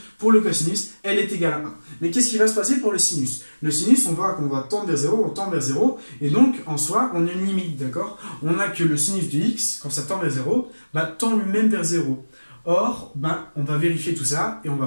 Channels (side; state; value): both; inverted; correlation -1.00